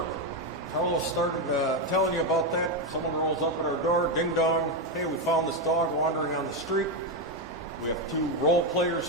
Carlos started telling you about that. Someone rolls up at our door, ding dong. Hey, we found this dog wandering on the street. We have 2 role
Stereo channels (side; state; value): both; normal; correlation 0.07